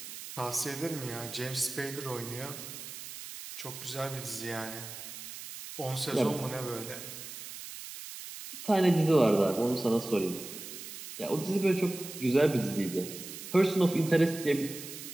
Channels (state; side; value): noise; right; hiss, 11 dB below the sound